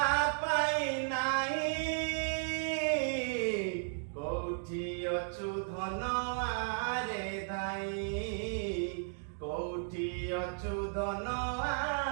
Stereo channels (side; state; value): left; silent; digital silence